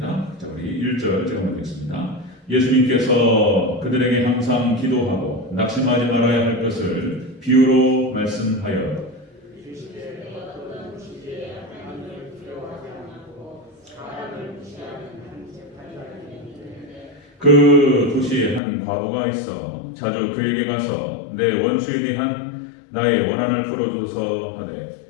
자, 우리 1절 제가 보겠습니다. 예수님께서 그들에게 항상 기도하고 낙심하지 말아야 할 것을 비유로 말씀하여 그 도시에 한 과부가 있어 자주 그에게 가서 내 원수에 대한 나의 원한을 풀어줘서 하되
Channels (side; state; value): right; drops out; at 18.6 s